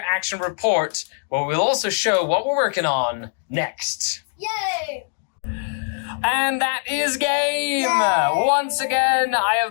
report where we'll also show what we're working on next. Yay! And that is game. Yay. Once again, I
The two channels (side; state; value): right; silent; digital silence